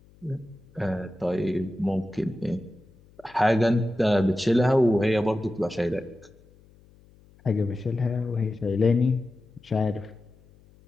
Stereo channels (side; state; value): left; noise; hum, 28 dB below the sound